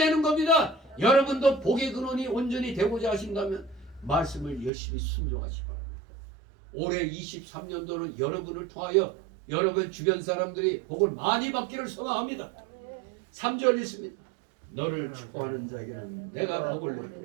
겁니다. 여러분도 복의 근원이 온전히 되고자 하신다면 말씀을 열심히 순종하시기 바랍니다. 올해 23년도는 여러분을 통하여 여러분 주변 사람들이 복을 많이 받기를 소망합니다. 3절 있습니다. 너를 축복하는 자에게는 내가 복을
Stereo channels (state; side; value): drops out; left; at 4.7 s